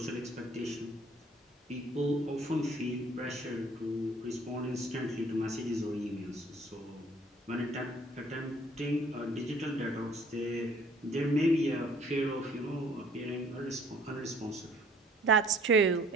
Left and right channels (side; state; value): both; normal; correlation 0.56